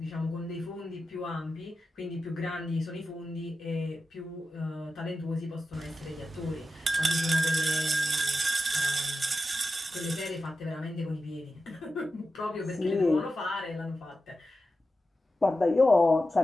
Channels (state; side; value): normal; both; correlation 0.91